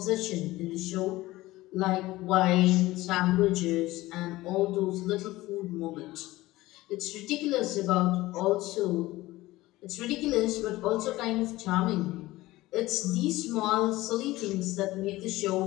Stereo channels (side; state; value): right; quieter; 18.3 dB